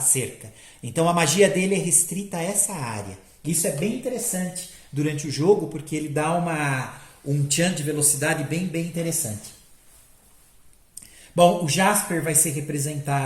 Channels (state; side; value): identical; both; correlation 1.00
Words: Então a magia dele é restrita a essa área. Isso é bem interessante durante o jogo, porque ele dá um tchan de velocidade bem interessante. Bom, o Jasper vai ser